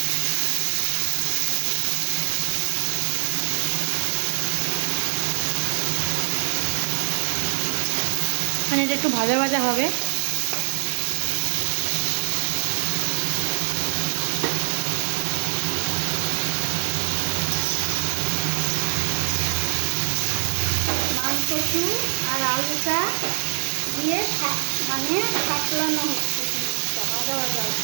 মানে এটা একটু ভাজা ভাজা হবে। মানকচু আর আলুটা দিয়ে মানে সাপলানো হচ্ছে, জিনিসটা ভাজা ভাজা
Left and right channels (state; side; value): silent; left; 63 dB below the other